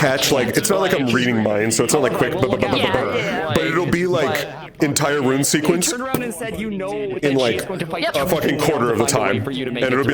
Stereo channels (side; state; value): both; identical; correlation 1.00